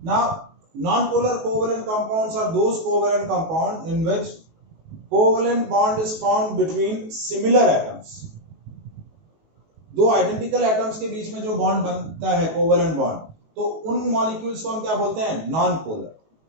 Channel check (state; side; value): late; left; 19 ms